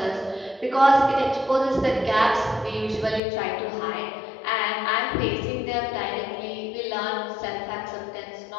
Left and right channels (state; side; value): drops out; right; at 3.2 s